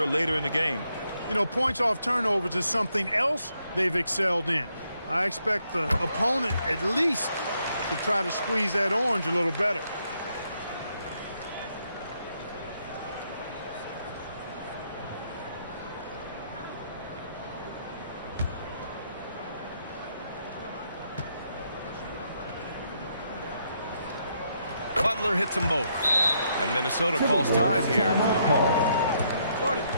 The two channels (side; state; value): both; inverted; correlation -0.75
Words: later in the game. You know, points off turnovers is something else they've excelled in. I expect the opponent at least to try to squeeze that orange a little better. Butler hits them both. And Minnesota calls time here.